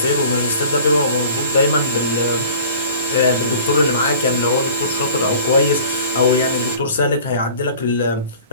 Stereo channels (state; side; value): inverted; both; correlation -0.45